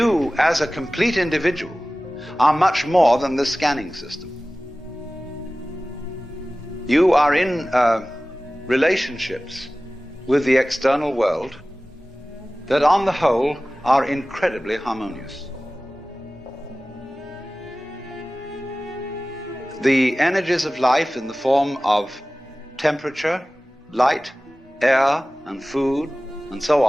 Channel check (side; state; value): both; normal; correlation 0.97